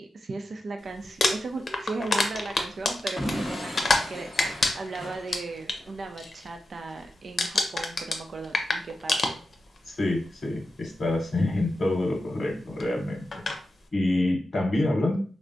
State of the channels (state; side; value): normal; both; correlation 0.91